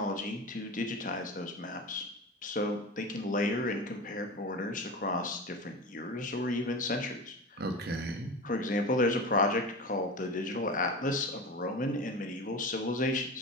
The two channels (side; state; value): both; normal; correlation 0.29